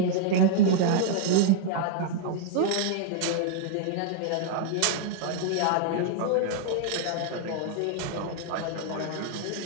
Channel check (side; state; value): both; different; correlation -0.01